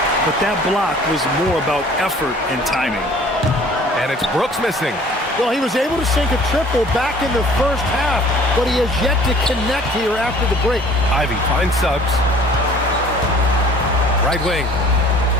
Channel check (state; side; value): normal; both; correlation 0.51